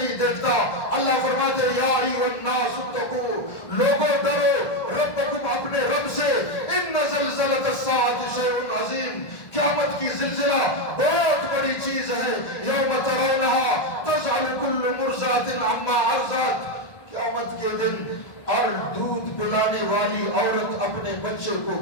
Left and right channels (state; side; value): late; right; 1.6 ms